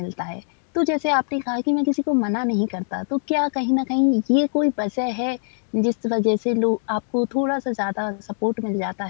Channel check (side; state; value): right; silent; digital silence